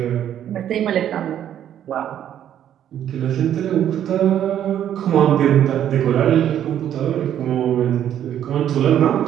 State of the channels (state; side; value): quieter; left; 10.5 dB